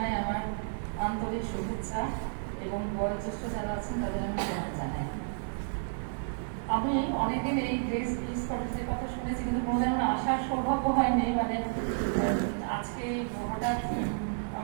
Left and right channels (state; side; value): silent; left; digital silence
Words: আমার আন্তরিক শুভেচ্ছা এবং বয়োজ্যেষ্ঠ যারা আছেন তাদের আমি প্রণাম জানাই। আমি অনেকদিন এই গ্রেস পিস কলেজের কথা শুনেছি, কিন্তু কোনোদিন আমার আসার সৌভাগ্য হয়নি। মানে আজকে হঠাৎ